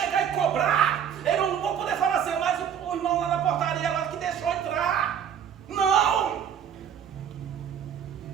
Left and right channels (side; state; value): left; quieter; 8.6 dB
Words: e cobrar, eu não vou poder falar assim, mas o irmão lá na portaria lá que deixou entrar. Não!